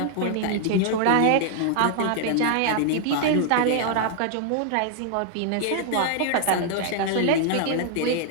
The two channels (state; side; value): different; both; correlation 0.00